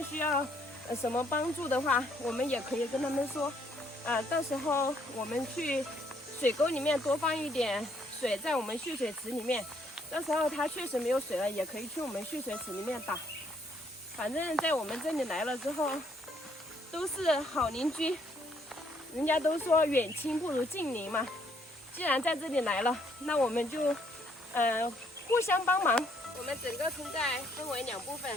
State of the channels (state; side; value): normal; both; correlation 0.68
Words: 需要什么帮助的话，我们也可以跟他们说，到时候我们去水沟里面多放一点水在我们蓄水池里面，到时候他确实没有水了，也可以去我们蓄水池里面打。反正在我们这里来了之后，都是好邻居，人家都说远亲不如近邻嘛。既然在这里来了，那我们就互相帮忙。我们整个村寨分为2部分，